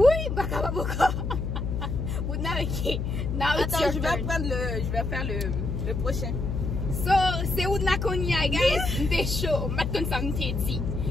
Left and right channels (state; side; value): noise; left; hum, 2 dB below the sound